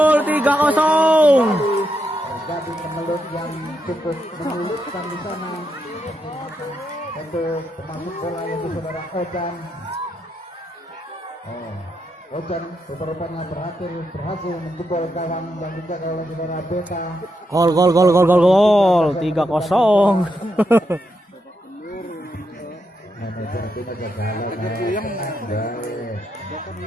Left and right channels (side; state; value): both; normal; correlation 0.82